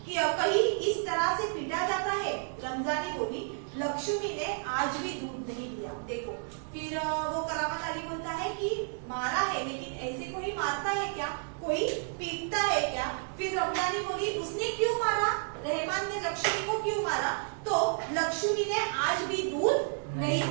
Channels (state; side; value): silent; left; 57 dB below the other